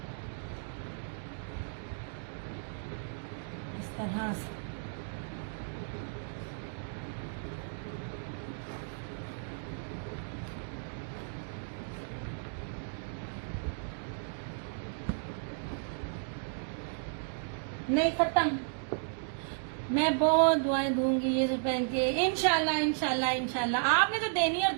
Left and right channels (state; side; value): silent; left; digital silence